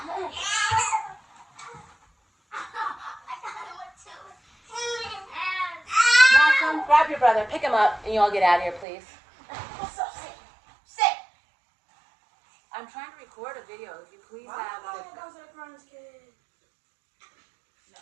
Malcolm, grab your brother. Pick him up, and you all get out of here, please. Sit. I'm trying to record a video. If you please have the...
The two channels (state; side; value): drops out; left; at 8.8 s